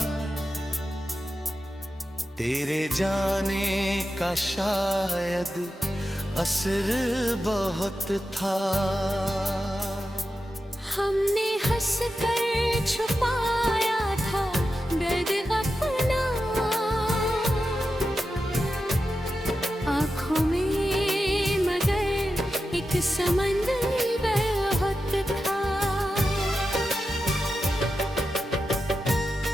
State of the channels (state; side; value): normal; both; correlation 0.91